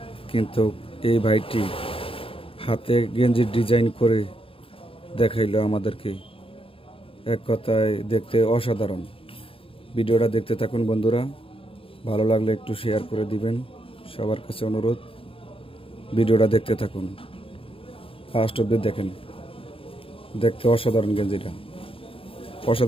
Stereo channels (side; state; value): right; late; 0.27 ms